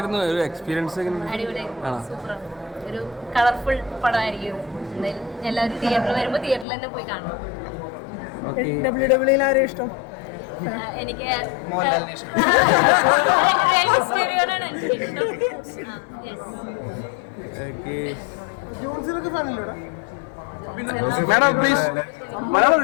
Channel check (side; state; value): right; drops out; at 6.7 s